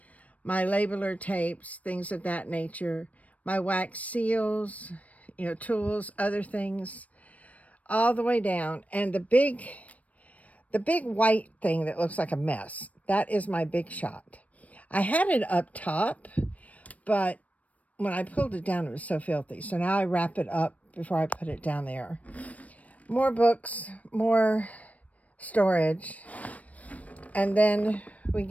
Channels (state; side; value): late; right; 0.068 ms